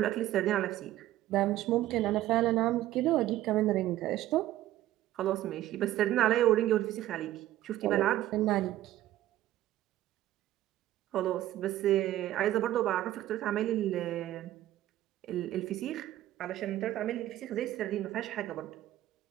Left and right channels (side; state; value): left; quieter; 14.2 dB